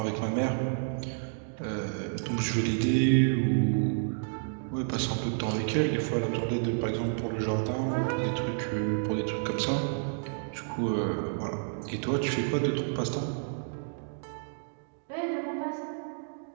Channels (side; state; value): left; silent; digital silence